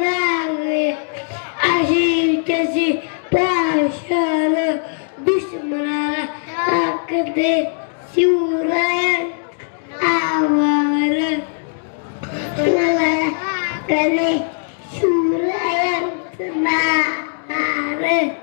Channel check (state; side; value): silent; right; 66 dB below the other